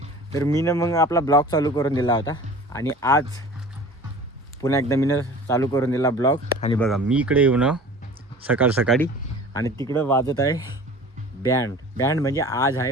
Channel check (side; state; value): both; normal; correlation 0.42